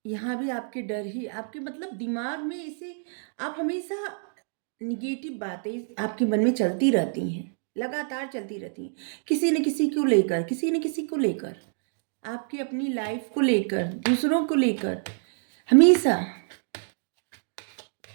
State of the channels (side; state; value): left; silent; digital silence